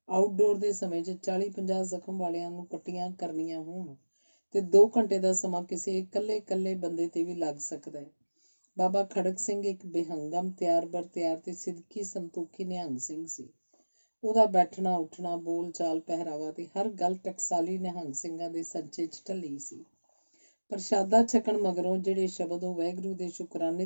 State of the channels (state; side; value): inverted; both; correlation -1.00